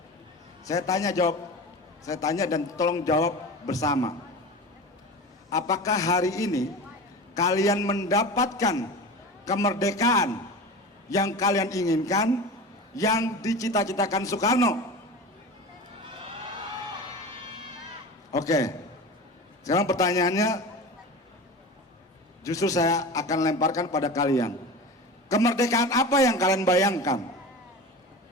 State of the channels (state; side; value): normal; both; correlation 0.31